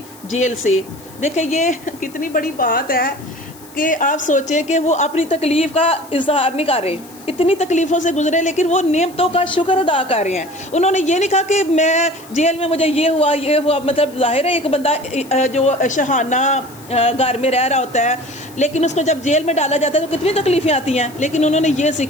جیل سے۔ دیکھیں یہ کتنی بڑی بات ہے کہ آپ سوچیں کہ وہ اپنی تکلیف کا اظہار نہیں کر رہے، اتنی تکلیفوں سے گزرے لیکن وہ نعمتوں کا شکر ادا کر رہے ہیں۔ انہوں نے یہ نہیں کہا کہ میں جیل میں مجھے یہ ہوا، مطلب ظاہر ہے ایک بندہ جو شہانہ گھر میں رہ رہا ہوتا ہے لیکن اس کو جب جیل میں ڈالا جاتا ہے تو کتنی تکلیفیں آتی ہیں، لیکن انہوں نے یہ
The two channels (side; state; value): left; noise; hiss, 22 dB below the sound